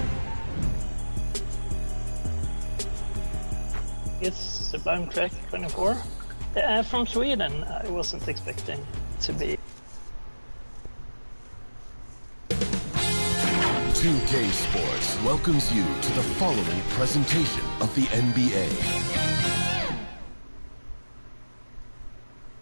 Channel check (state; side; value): inverted; both; correlation -1.00